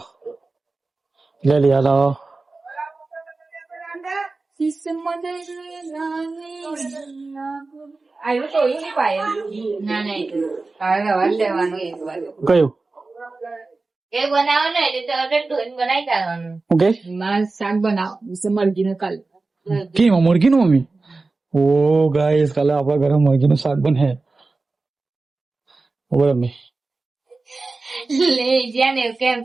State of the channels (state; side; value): quieter; left; 3.6 dB